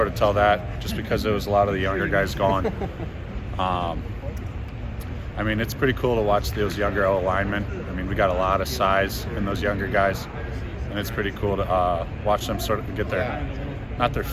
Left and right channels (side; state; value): both; identical; correlation 1.00